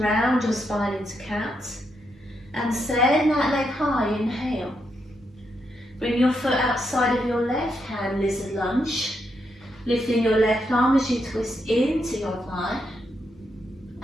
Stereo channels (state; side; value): normal; both; correlation 0.81